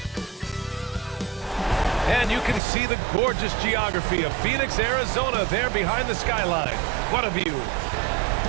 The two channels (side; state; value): left; drops out; at 2.6 s